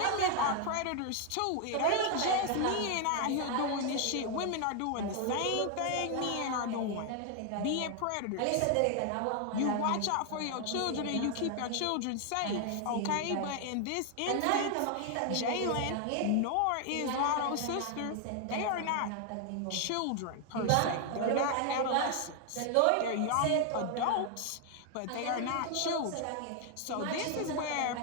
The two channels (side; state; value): both; different; correlation 0.00